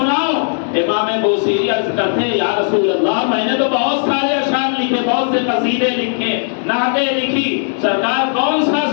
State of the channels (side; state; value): right; silent; digital silence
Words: امام بوسیری عرض کرتے یا رسول اللہ میں نے تو بہت سارے اشعار لکھے، بہت سے قصیدے لکھے، نعتیں لکھی، سرکار کون سا